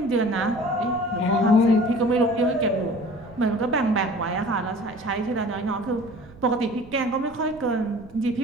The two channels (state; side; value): noise; right; rumble, 21 dB below the sound